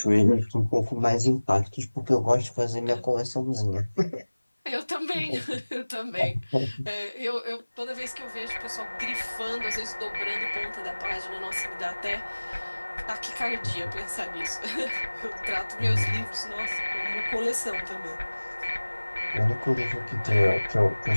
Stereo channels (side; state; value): both; inverted; correlation -1.00